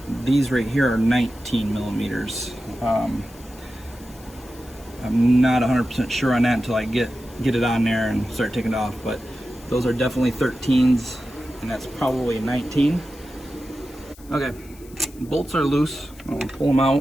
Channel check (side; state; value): left; noise; hiss, 23 dB below the sound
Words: these right here are 19 millimeters. I'm not 100% sure on that until I get it on there and start taking it off, but those are definitely 13s, and that's probably a 19. Okay, bolts are loose. I'm gonna pull them